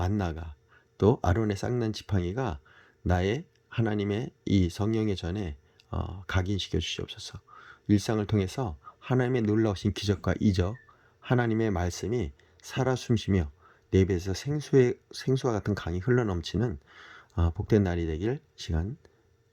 또 아론의 쌍난 지팡이가 나의 하나님의 이 성령의 전에 각인시켜 주시옵소서. 일상을 통해서 하나님의 놀라우신 기적과 이적, 하나님의 말씀이 살아 숨쉬며 내 입에서 생수와 같은 강이 흘러넘치는 복된 날이 되길 시간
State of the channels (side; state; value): both; identical; correlation 1.00